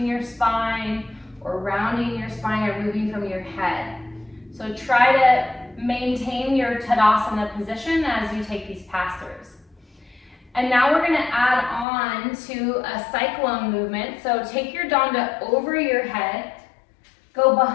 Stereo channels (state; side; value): drops out; right; at 11.9 s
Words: your spine or rounding your spine or moving from your head. So try to maintain your Tadasana position as you take these pass-throughs. And now we're going to add on to a cyclone movement. So take your danda over your head, go